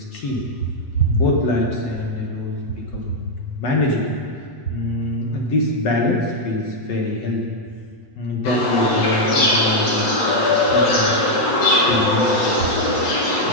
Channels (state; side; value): late; right; 8.1 ms